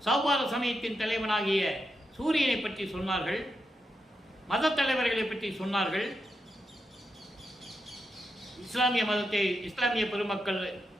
சௌபார சமயத்தின் தலைவனாகிய சூரியனை பற்றி சொன்னார்கள். மத தலைவர்களை பற்றி சொன்னார்கள். இஸ்லாமிய பெருமக்கள்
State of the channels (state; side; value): normal; both; correlation 0.86